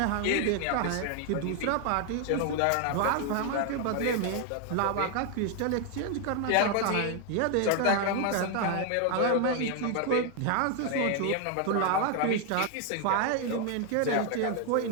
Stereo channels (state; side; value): different; both; correlation 0.00